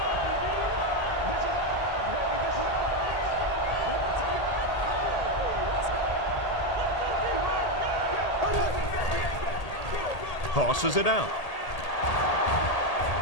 Tosses it out.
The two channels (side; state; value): right; late; 1.8 ms